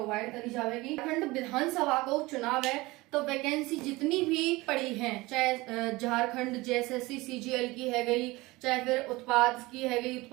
करी जाएगी। झारखंड विधानसभा को चुनाव है तो वैकेंसी जितनी भी पड़ी है, चाहे झारखंड जेएसएससी सीजीएल की है गई, चाहे फिर उत्पाद की है गई,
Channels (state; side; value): quieter; left; 21.4 dB